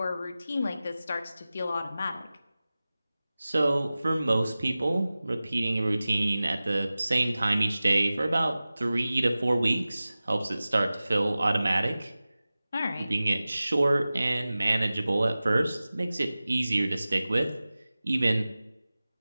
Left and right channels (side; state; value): both; inverted; correlation -0.97